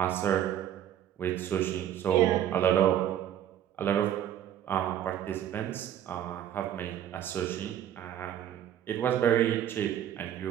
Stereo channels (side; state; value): left; quieter; 10.7 dB